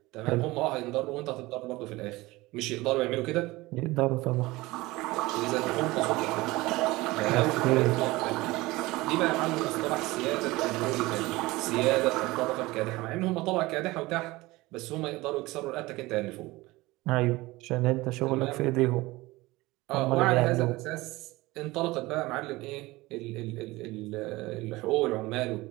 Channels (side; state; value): left; quieter; 20.4 dB